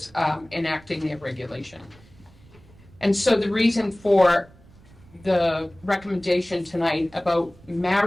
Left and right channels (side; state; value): right; noise; rumble, 25 dB below the sound